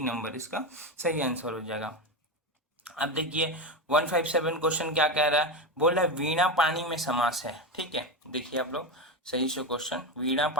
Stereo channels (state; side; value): normal; both; correlation 0.16